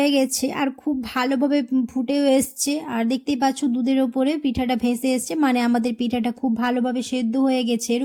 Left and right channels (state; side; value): identical; both; correlation 1.00